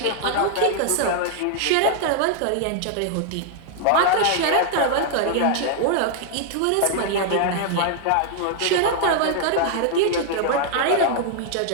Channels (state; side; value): different; both; correlation 0.00